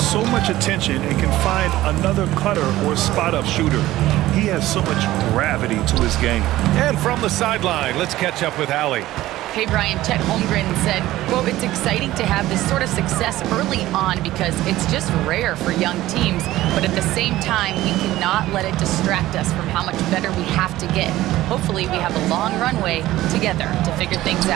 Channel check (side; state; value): left; quieter; 15.8 dB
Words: much attention and can find another cutter or spot-up shooter. He has so much gravity to his game. And from the sideline, let's catch up with Allie. Hey, Brian, Chet Holmgren said, quote, "It's exciting to have this sort of success early on because it's just rare for young teams. But at the same time, we cannot let it distract us from how much better we have to get. Hopefully, we have a long runway together to figure things